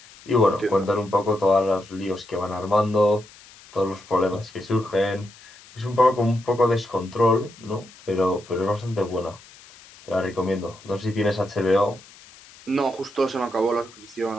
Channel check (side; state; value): left; noise; hiss, 22 dB below the sound